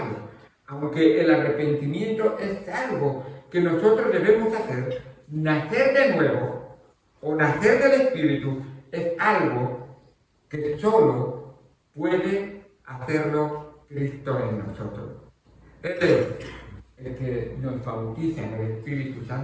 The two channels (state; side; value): identical; both; correlation 1.00